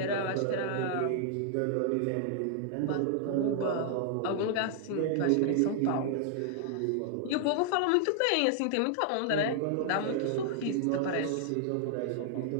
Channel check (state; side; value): different; both; correlation 0.00